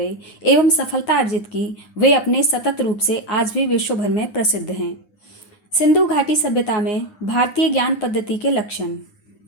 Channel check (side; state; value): right; late; 9.7 ms